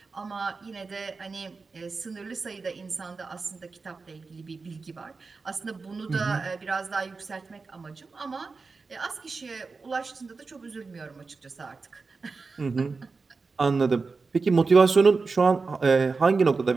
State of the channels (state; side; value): quieter; left; 4.3 dB